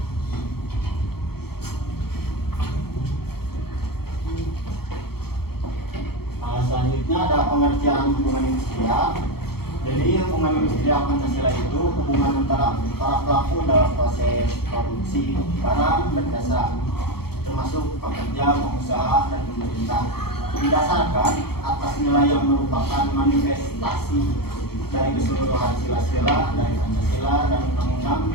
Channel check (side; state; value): right; late; 0.95 ms